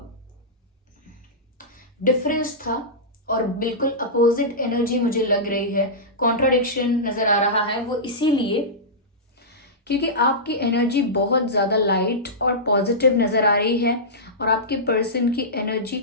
डिफरेंस था और बिल्कुल अपोजिट एनर्जी मुझे लग रही है। कॉन्ट्राडिक्शन नजर आ रहा है वो इसीलिए क्योंकि आपकी एनर्जी बहुत ज्यादा लाइट और पॉजिटिव नजर आ रही है और आपके पर्सन की एनर्जी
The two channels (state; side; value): normal; both; correlation -0.15